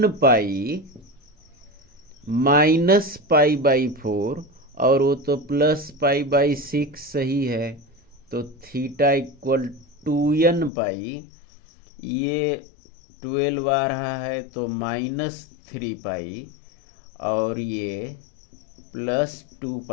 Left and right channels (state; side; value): drops out; right; at 10.7 s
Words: pi minus pi by 4 और वो तो प्लस पाई बाई 6 सही है, तो थीटा इक्वल 2n पाई, ये 12 आ रहा है तो माइनस 3 पाई और ये प्लस 2